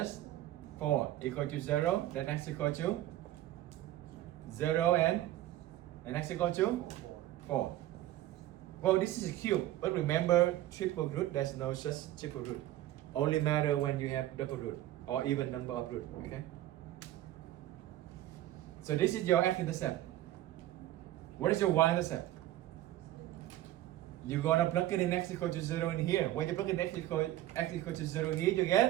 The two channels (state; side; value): quieter; left; 14.4 dB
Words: 4 equal to 0. Then x equal to 0 and x equal to 4. Well, this is a cube, but remember triple root, there's no such triple root. Only matter when you have double root or even number of root, okay? So this is your x-intercept. What is your y-intercept? You're gonna plug it in x equal to 0 in here. When you plug in x equal to 0 here, you